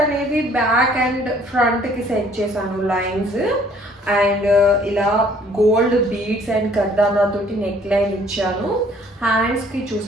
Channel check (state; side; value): normal; both; correlation 0.59